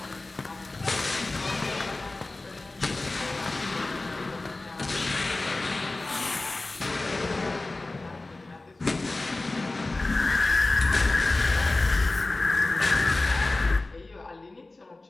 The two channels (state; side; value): quieter; right; 3.1 dB